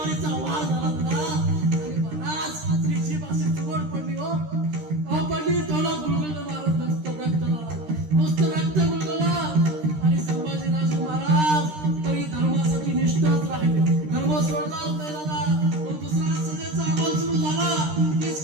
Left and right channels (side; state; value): left; late; 13 ms